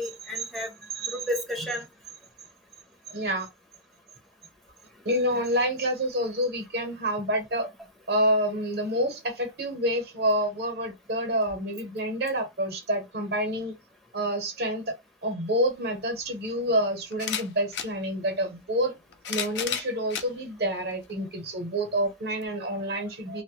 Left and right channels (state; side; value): normal; both; correlation -0.19